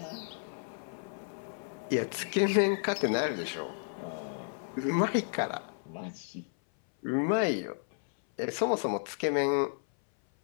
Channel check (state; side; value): silent; right; 56 dB below the other